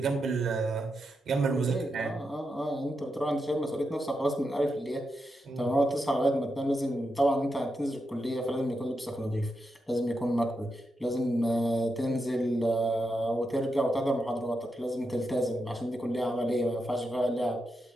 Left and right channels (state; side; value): normal; both; correlation 0.86